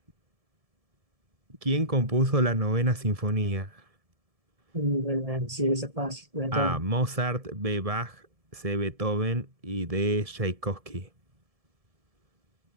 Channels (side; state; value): left; late; 1.7 ms